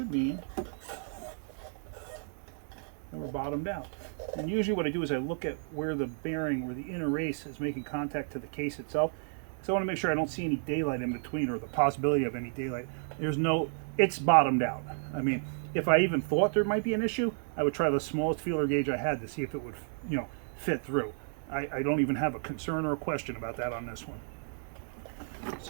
mean that we're bottomed out. And usually what I do is I look at where the bearing, where the inner race is making contact to the case itself. So I want to make sure I don't see any daylight in between, or the possibility of any daylight. It's bottomed out. I mean, if I even thought there might be an issue, I would try the smallest feeler gauge I had to see if it would, fit through. I don't even have a concern or a question about that on this one.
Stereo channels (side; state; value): left; silent; digital silence